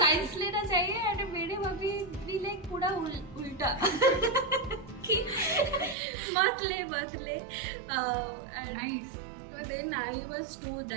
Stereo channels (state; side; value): drops out; left; at 6.0 s